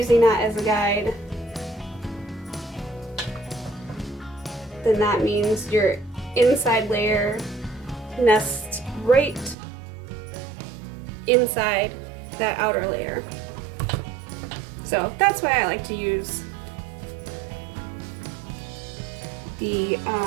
that as a guide, then that means your inside layer nests right inside that outer layer. So that's why I like to use the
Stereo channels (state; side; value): drops out; left; at 9.6 s